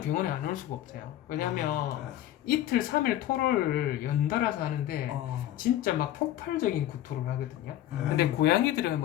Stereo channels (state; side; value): quieter; right; 12.9 dB